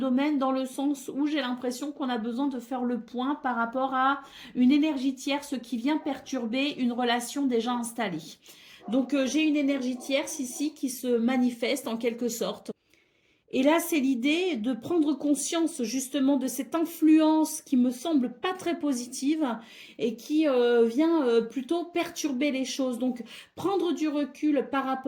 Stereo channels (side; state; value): both; identical; correlation 1.00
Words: dans le sens où j'ai l'impression qu'on a besoin de faire le point par rapport à une énergie tierce qui vient perturber une relation déjà installée. Donc, j'ai une énergie tierce ici qui se manifeste en quelque sorte. Et là, c'est l'idée de prendre conscience justement de cette influence qui me semble pas très positive et qui vient plutôt perturber les choses. Donc, prendre du recul par